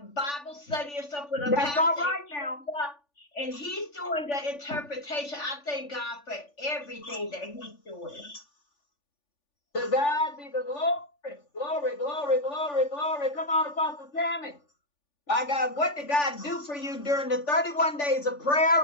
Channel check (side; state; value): right; late; 3.5 ms